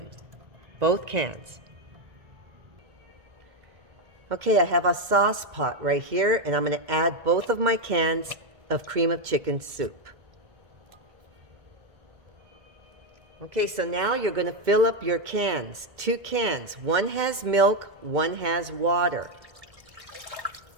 both cans. Okay, I have a sauce pot right here, and I'm going to add both of my cans of cream of chicken soup. Okay, so now you're going to fill up your cans, 2 cans. One has milk, one has water.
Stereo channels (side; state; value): left; late; 1.7 ms